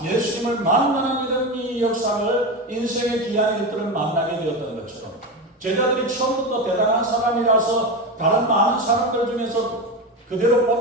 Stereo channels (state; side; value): normal; both; correlation 0.19